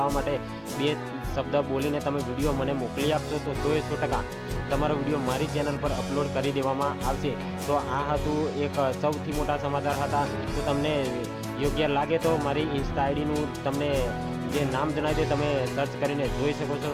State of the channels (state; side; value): identical; both; correlation 1.00